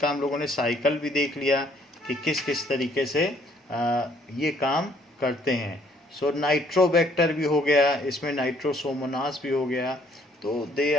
हम लोगों ने साइकिल भी देख लिया कि किस किस तरीके से ये काम करते हैं। सो नाइट्रोबैक्टर भी हो गया, इसमें नाइट्रोसोमोनास भी हो गया, तो they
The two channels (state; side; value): normal; both; correlation 0.64